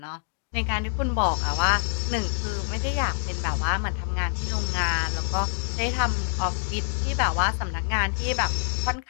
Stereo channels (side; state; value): right; silent; digital silence